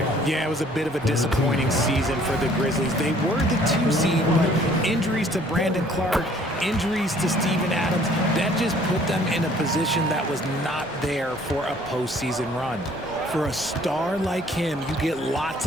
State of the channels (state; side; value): normal; both; correlation 0.57